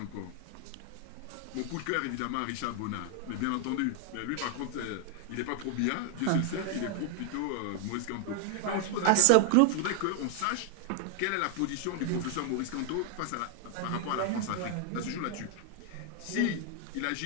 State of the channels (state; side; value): different; both; correlation 0.00